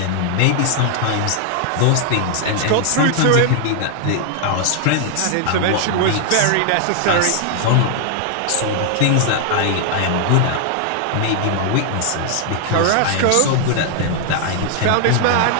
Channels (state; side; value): different; both; correlation 0.00